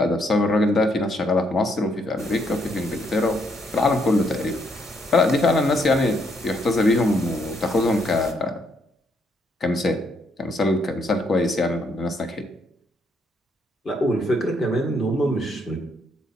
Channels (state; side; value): normal; both; correlation 0.73